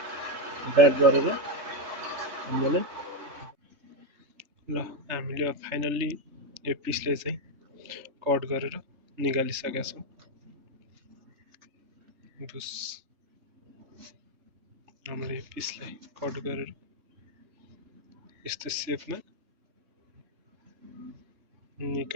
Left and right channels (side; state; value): left; late; 3.4 ms